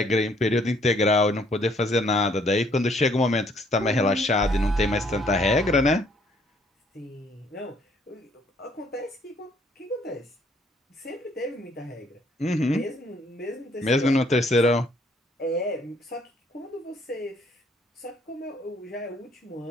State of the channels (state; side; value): normal; both; correlation 0.65